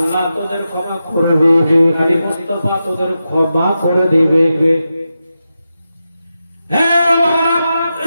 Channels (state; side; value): inverted; both; correlation -0.90